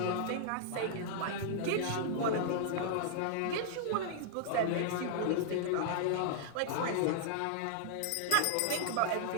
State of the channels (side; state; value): both; different; correlation -0.01